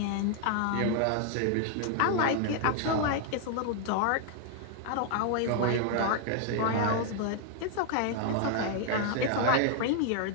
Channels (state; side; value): different; both; correlation 0.00